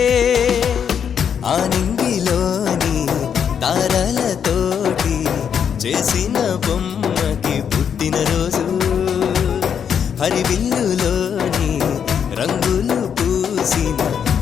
ఆనింగిలోని తారలతోటి చేసిన బొమ్మకి పుట్టినరోజు, హరివిల్లులోని రంగులు పూసిన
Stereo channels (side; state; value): right; quieter; 7.8 dB